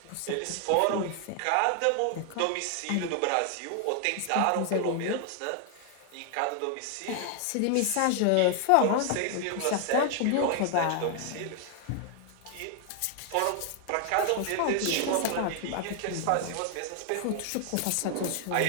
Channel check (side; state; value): both; different; correlation 0.00